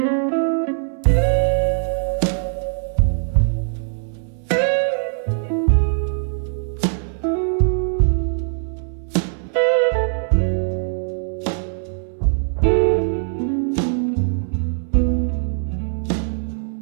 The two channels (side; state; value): left; silent; 65 dB below the other